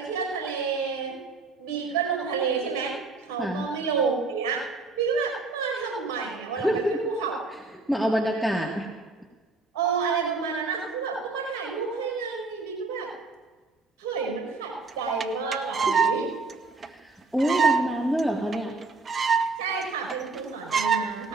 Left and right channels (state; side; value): quieter; left; 3.8 dB